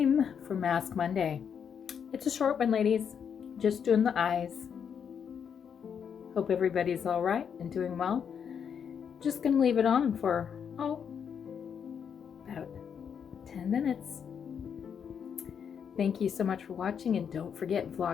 for Mask Monday. It's a short one, ladies. Just doing the eyes. Hope everybody's all right and doing well. Just gonna leave it on for, about 10 minutes. Thank you so much for watching, and don't forget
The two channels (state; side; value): quieter; right; 7.4 dB